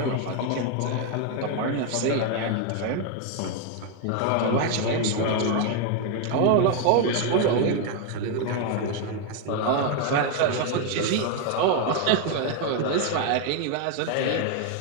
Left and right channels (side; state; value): both; different; correlation 0.01